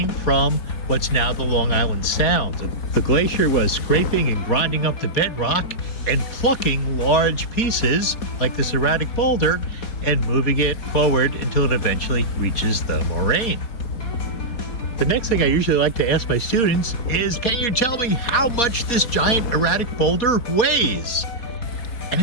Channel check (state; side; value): late; right; 4.3 ms